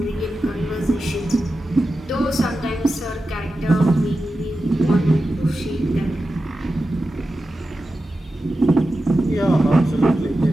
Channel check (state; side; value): normal; both; correlation 0.92